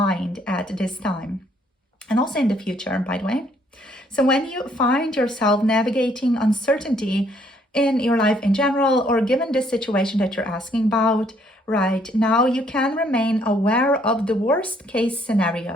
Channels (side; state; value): both; normal; correlation 0.66